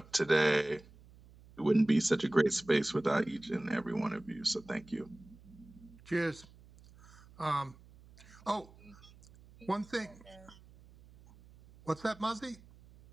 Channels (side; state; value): right; noise; hum, 23 dB below the sound